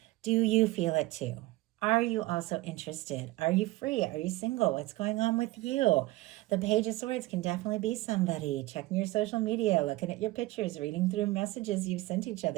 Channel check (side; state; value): left; quieter; 18.8 dB